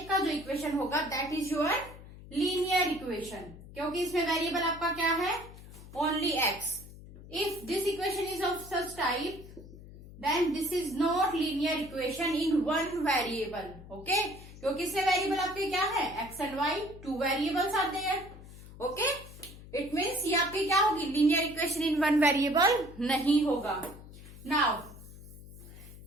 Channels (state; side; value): noise; left; hum, 17 dB below the sound